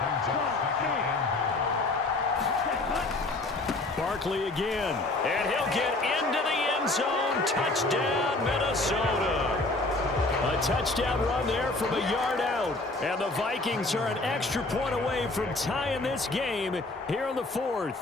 Barkley again. And he'll get into the end zone. Touchdown, Minnesota. A touchdown run there from a yard out. And the Vikings are an extra point away from tying this game here in the 4th.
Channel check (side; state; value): right; quieter; 3.0 dB